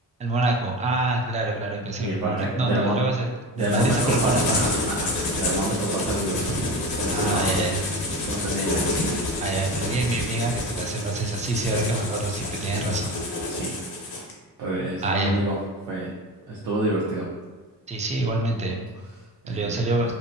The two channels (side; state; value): both; normal; correlation 0.29